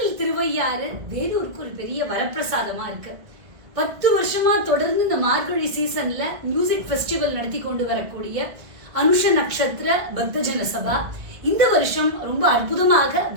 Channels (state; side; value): late; left; 1.7 ms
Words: திருவையாறு வேலூருக்கு ஒரு பெரிய வரப்பிரசாதமா இருக்கு. 10 வருஷமா தொடர்ந்து இந்த மார்கழி சீசன்ல மியூசிக் ஃபெஸ்டிவல் நடத்தி கொண்டு வரக்கூடிய அனுஷ நட்சத்திர பக்தஜன சபா இந்த வருஷம் ரொம்ப அற்புதமாக